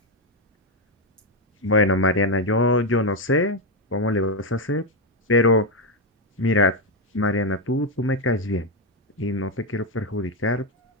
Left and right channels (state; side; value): normal; both; correlation 0.06